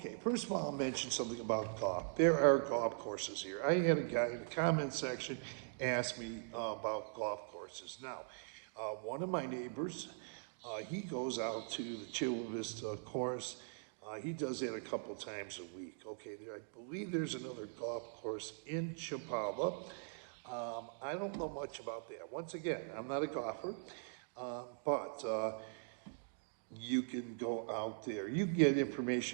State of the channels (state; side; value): silent; left; digital silence